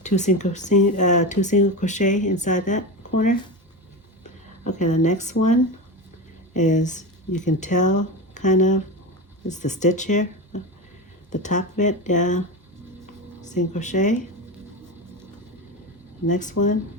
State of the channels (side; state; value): both; normal; correlation 0.21